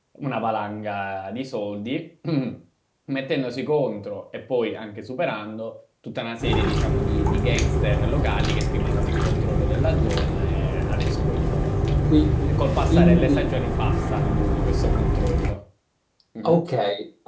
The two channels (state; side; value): identical; both; correlation 1.00